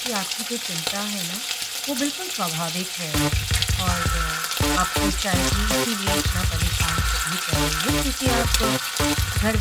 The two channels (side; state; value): both; identical; correlation 1.00